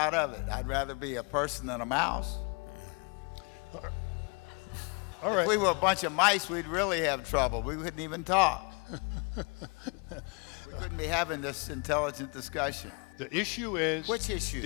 of it. I'd rather be a person than a mouse. All right. If we were a bunch of mice, we'd really have trouble. We wouldn't even talk. We couldn't be having this intelligent discussion. The issue is... Which issue?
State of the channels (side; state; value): right; quieter; 32.9 dB